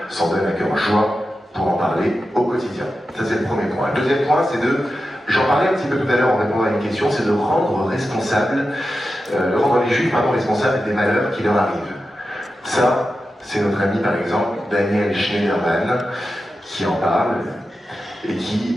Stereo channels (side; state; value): both; normal; correlation 0.91